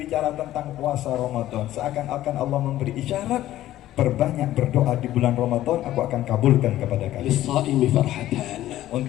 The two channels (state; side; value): quieter; right; 14.0 dB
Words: tentang puasa Ramadan. Seakan-akan Allah memberi isyarat, perbanyak berdoa di bulan Ramadan, aku akan kabulkan kepada kalian. للصائم فرحتان.